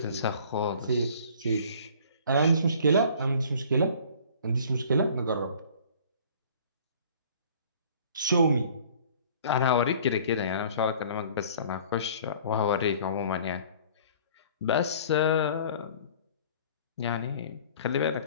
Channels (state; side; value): inverted; both; correlation -0.50